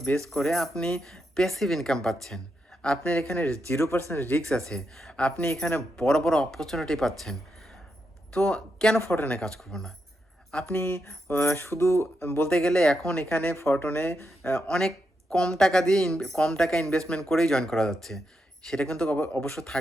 বেস করে আপনি প্যাসিভ ইনকাম পাচ্ছেন। আপনার এখানে 0% রিস্ক আছে। আপনি এখানে বড়, বড় অপরচুনিটি পাচ্ছেন। তো কেন ফরটনে কাজ করব না? আপনি শুধু বলতে গেলে এখন এখানে ফরটনে অনেক কম টাকা ইনভেস্টমেন্ট করেই জয়েন করা যাচ্ছে। সেটা কিন্তু অবশ্য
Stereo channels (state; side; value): normal; both; correlation 0.84